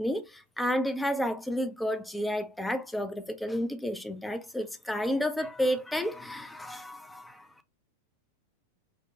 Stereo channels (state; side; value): normal; both; correlation 0.85